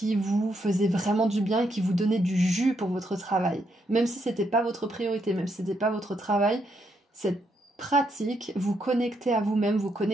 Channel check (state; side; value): normal; both; correlation 0.77